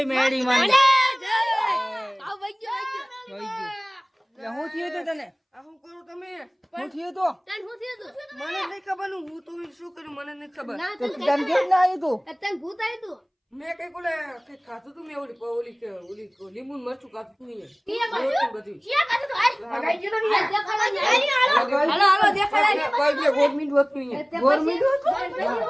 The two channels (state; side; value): identical; both; correlation 1.00